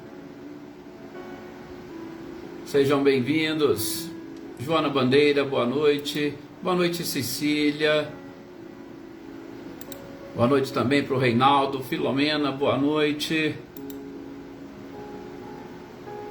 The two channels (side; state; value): both; identical; correlation 1.00